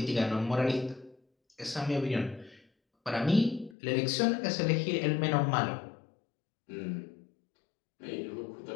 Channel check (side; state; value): right; drops out; at 3.8 s